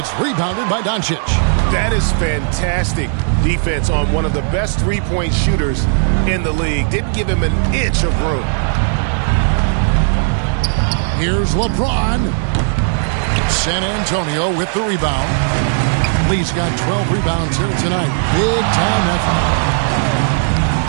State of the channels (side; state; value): left; silent; digital silence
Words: rebounded by Doncic. That is fantastic defense on one of the best three-point shooters in the league. Didn't give him an inch of room. Here's LeBron. San Antonio with the rebound. Lee's got 12 rebounds here tonight. Big time effort.